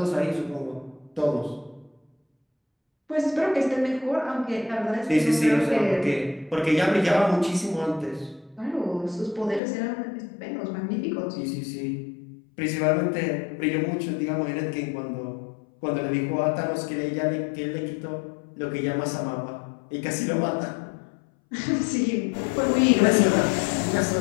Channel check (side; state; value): right; drops out; at 9.6 s